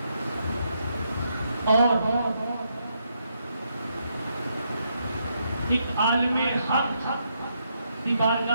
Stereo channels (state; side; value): inverted; both; correlation -0.78